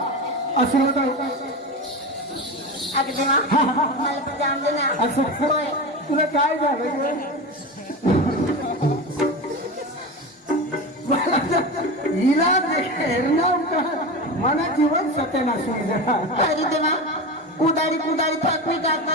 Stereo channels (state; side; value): normal; both; correlation 0.24